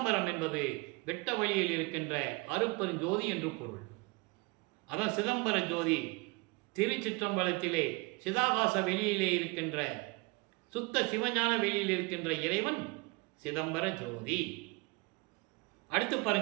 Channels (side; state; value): left; quieter; 26.4 dB